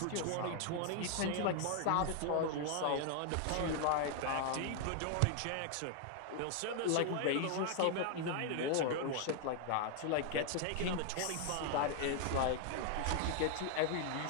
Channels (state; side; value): different; both; correlation 0.00